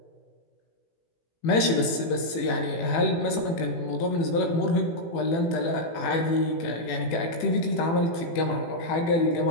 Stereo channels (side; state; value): right; late; 18 ms